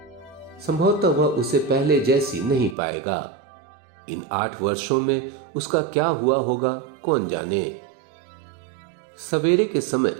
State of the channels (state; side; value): drops out; left; at 2.8 s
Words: संभवतः वह उसे पहले जैसी नहीं पाएगा। इन 8 वर्षों में उसका क्या हुआ होगा कौन जाने। सवेरे के समय